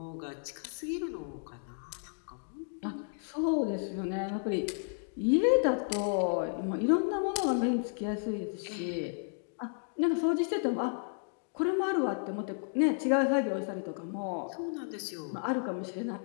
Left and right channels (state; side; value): silent; right; digital silence